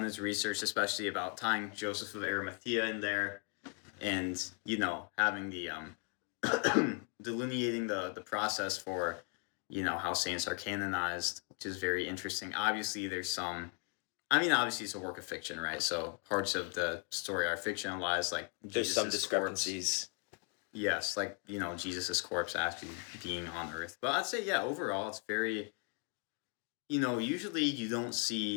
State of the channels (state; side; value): quieter; right; 39.4 dB